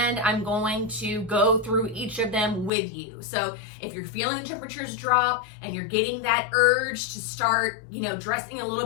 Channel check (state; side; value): drops out; right; at 2.7 s